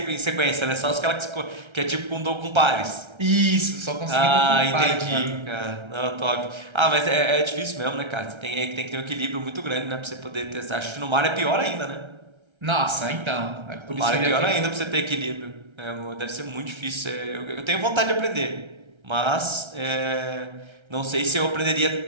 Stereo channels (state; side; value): late; left; 1.3 ms